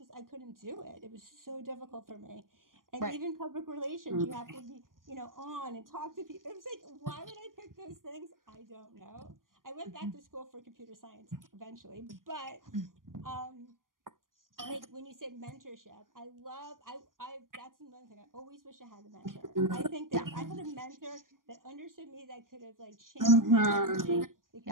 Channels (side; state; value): left; late; 0.90 ms